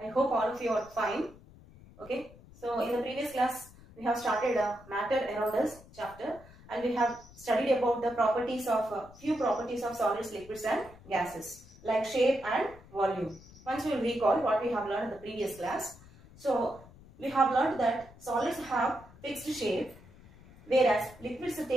I hope all of you are fine. Okay. So in the previous class, we have started matter around us chapter, and we have studied about the properties of few properties of solids, liquids, and gases like shape and volume. Once we will recall what we have learned in the previous class. So we have learned that solids have fixed shape, whereas liquids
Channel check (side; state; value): left; noise; rumble, 21 dB below the sound